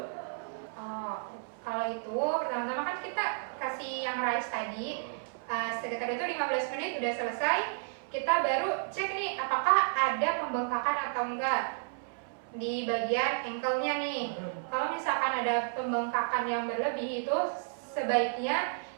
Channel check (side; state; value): left; silent; 56 dB below the other